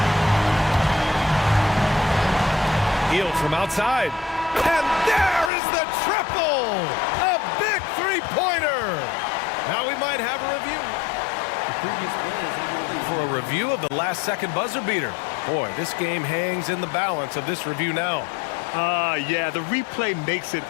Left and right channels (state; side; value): drops out; right; at 5.5 s